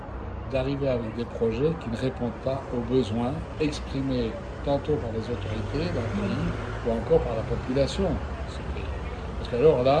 d'arriver avec des projets qui ne répondent pas aux besoins exprimés tantôt par les autorités d'un pays ou encore par la population de ce pays. Parce qu'alors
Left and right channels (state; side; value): identical; both; correlation 1.00